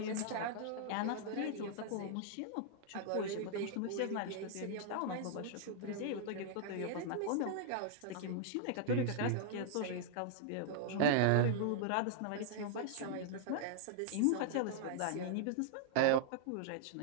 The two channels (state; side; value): different; both; correlation -0.01